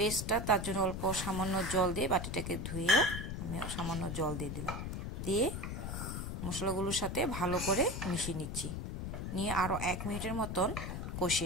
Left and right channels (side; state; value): left; noise; rumble, 4 dB below the sound